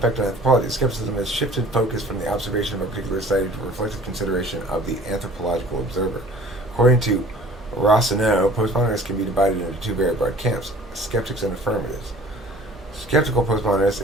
on anthropology. Skepticism has shifted focus from the observation of a particular study to reflective consideration of the anthropological observer. According to Rossineau, postmodernists can be divided into two very broad camps: skeptics and affirmatives. Skeptical postmodernists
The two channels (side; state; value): both; normal; correlation 0.48